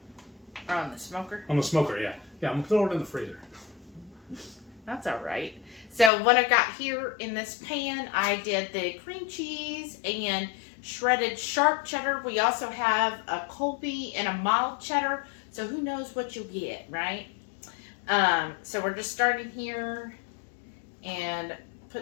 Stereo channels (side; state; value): right; drops out; at 6.1 s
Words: Or on the smoker? On the smoker, yeah. Yeah, I'm going to throw it in the freezer. That's all right. So what I got here in this pan, I did the cream cheese and shredded sharp cheddar. We also have a Colby and a mild cheddar. So who knows what you'll get, right? So we're just starting here and